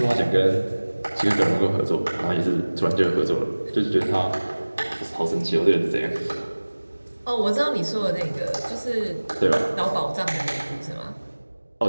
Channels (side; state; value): both; inverted; correlation -1.00